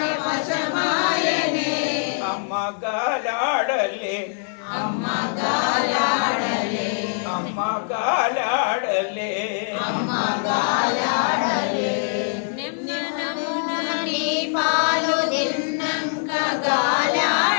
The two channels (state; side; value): silent; right; digital silence